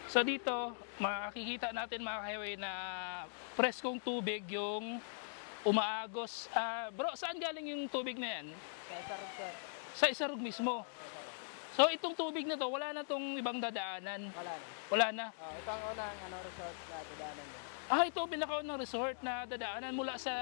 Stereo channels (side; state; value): right; silent; digital silence